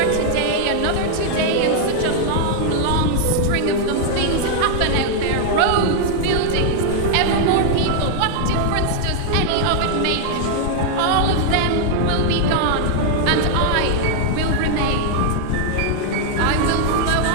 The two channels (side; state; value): both; different; correlation 0.00